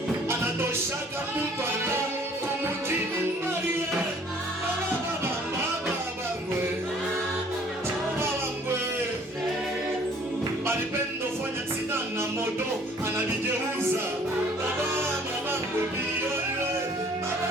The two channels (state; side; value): normal; both; correlation 0.56